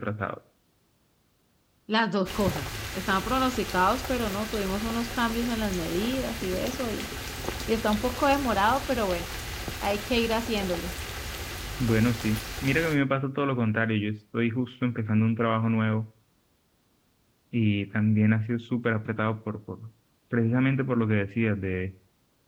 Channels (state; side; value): identical; both; correlation 1.00